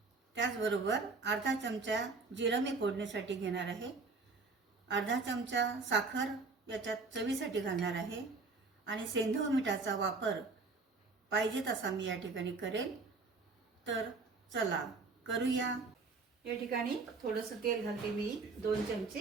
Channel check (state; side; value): quieter; left; 4.1 dB